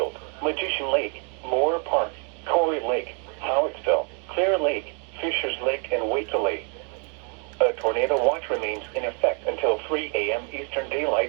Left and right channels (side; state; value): left; quieter; 39.0 dB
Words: Magician Lake, Moore Park, Corey Lake, Howittsville, Clear Lake, Fishers Lake, and Waitla Lake. A tornado watch remains in effect until 3 a.m. Eastern